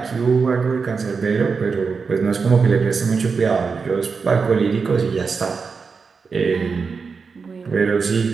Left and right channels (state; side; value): quieter; left; 5.1 dB